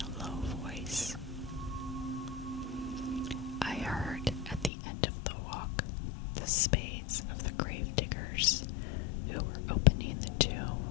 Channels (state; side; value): drops out; right; at 4.7 s